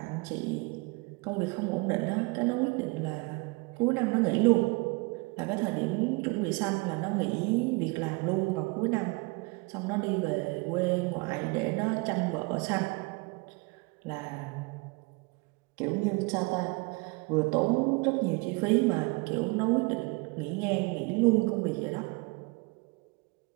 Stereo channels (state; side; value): quieter; left; 28.0 dB